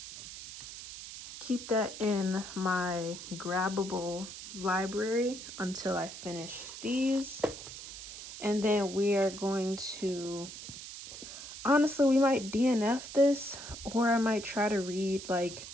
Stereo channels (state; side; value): noise; right; hiss, 12 dB below the sound